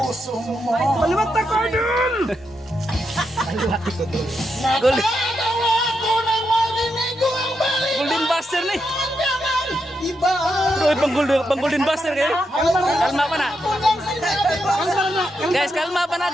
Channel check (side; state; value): both; normal; correlation 0.83